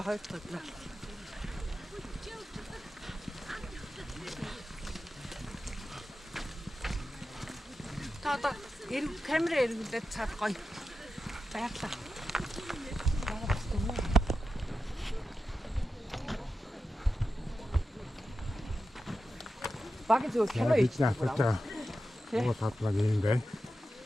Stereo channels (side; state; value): both; normal; correlation 0.91